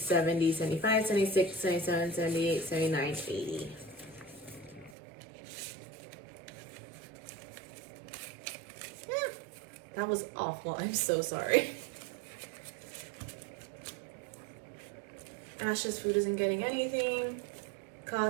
75, 76, 77, 78, 79, 80. That was awful. I'm so sorry. Ash's Food isn't getting anything.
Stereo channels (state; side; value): drops out; left; at 5.0 s